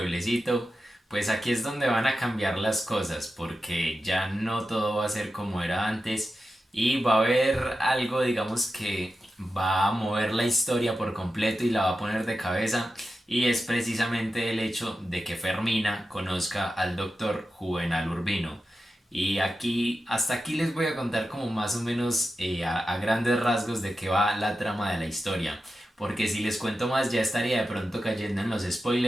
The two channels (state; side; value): normal; both; correlation 0.91